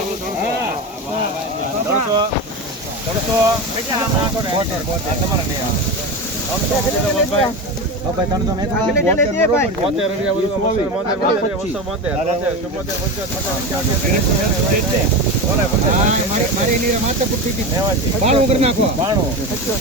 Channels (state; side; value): normal; both; correlation 0.23